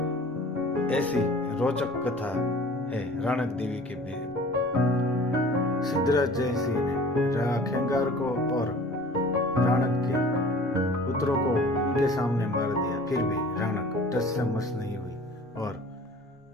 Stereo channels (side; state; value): both; normal; correlation 0.45